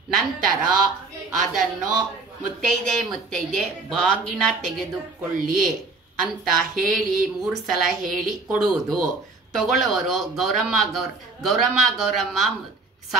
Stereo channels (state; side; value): quieter; left; 3.8 dB